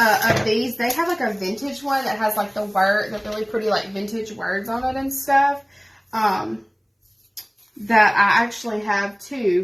these. They have like a vintage one that has like the really pretty like vintage words on it and stuff. That I actually have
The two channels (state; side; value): identical; both; correlation 1.00